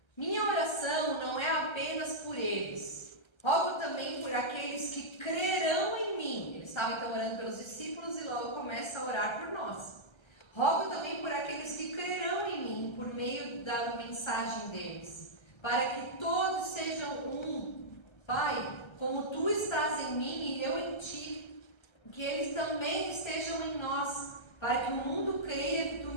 minha oração não é apenas por eles, rogo também por aqueles que crerão em mim. Ele estava então orando pelos discípulos e logo começa a orar por nós. Rogo também por aqueles que crerão em mim por meio da mensagem deles, para que todos sejam um. Pai, como tu estás em mim e eu em ti, que eles também estejam em nós, para que o mundo creia que tu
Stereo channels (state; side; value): late; right; 1.3 ms